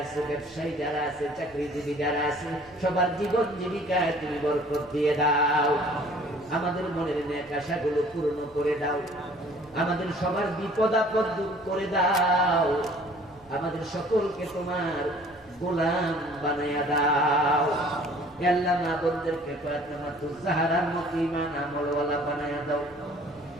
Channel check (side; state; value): both; normal; correlation 0.53